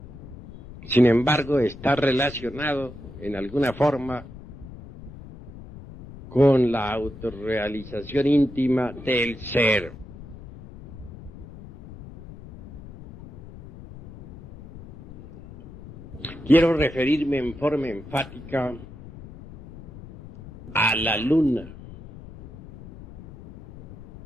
sin embargo está relacionado en alguna forma con la autorrealización íntima del ser. Quiero referirme en forma enfática a la luna.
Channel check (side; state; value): left; noise; rumble, 16 dB below the sound